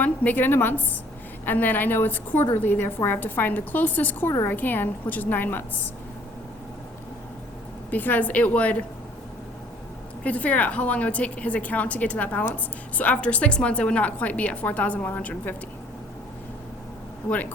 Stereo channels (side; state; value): both; normal; correlation 0.58